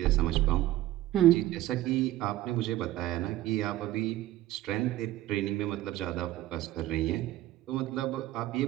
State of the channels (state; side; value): quieter; left; 15.0 dB